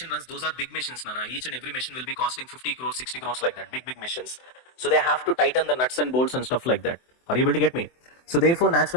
runs, those are big machines, Nana. Each and every machine will be costing 50 crores, 60 crores like that. Big machines. So they have to tighten the nuts and bolts and stuff like that. Are you able to get me? So therefore,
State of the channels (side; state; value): right; late; 24 ms